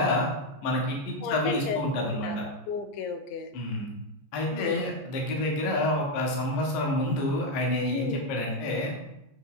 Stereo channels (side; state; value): right; late; 15 ms